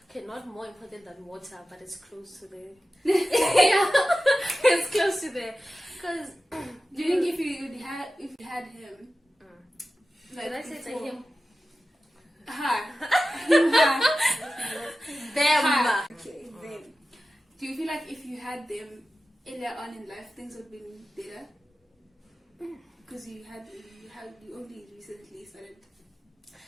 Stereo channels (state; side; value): normal; both; correlation 0.94